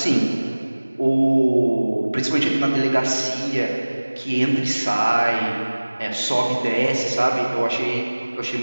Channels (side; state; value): both; inverted; correlation -1.00